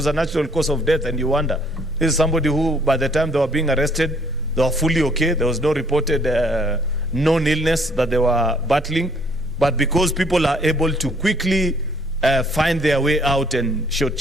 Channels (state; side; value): normal; both; correlation 0.63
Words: a natural cause of death, and you wonder, this is somebody who by the time they were being arrested, they were fully okay. There was no reported known illness that they were battling. But because people are able to quickly find their way out and